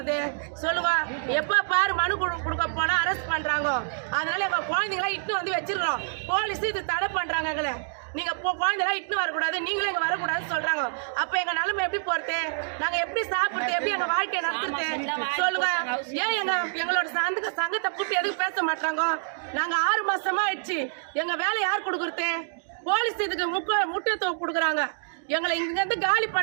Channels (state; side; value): silent; left; digital silence